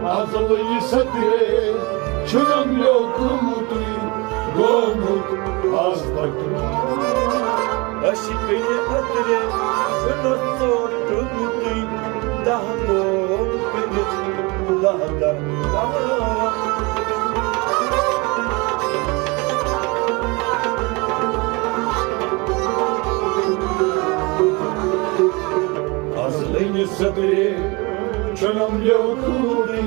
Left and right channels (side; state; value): left; quieter; 26.8 dB